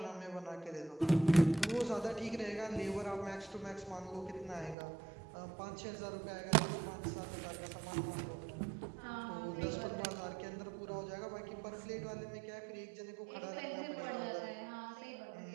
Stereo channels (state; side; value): drops out; left; at 4.8 s